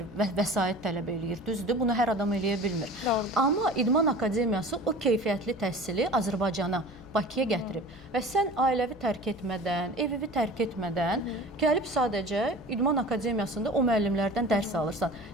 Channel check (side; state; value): left; noise; hum, 21 dB below the sound